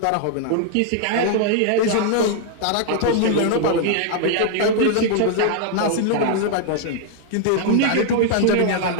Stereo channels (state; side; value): different; both; correlation 0.00